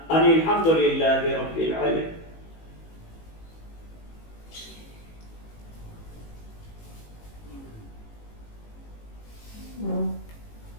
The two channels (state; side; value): late; right; 18 ms